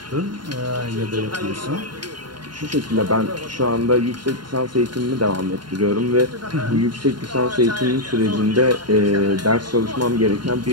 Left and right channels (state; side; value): late; left; 0.71 ms